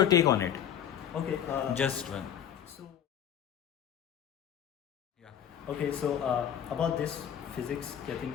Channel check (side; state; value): right; quieter; 9.5 dB